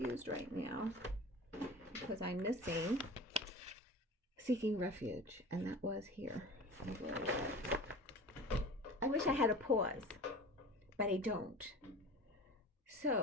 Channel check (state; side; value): normal; both; correlation 0.36